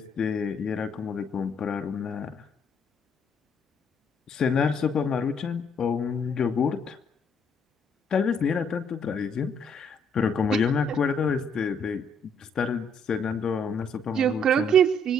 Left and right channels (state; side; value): normal; both; correlation 0.67